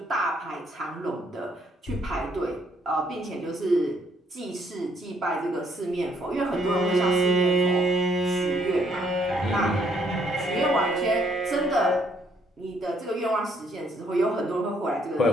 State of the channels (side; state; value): both; normal; correlation 0.69